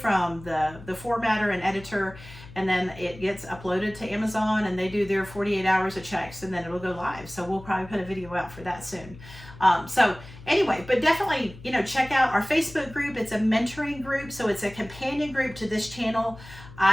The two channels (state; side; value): noise; left; hum, 17 dB below the sound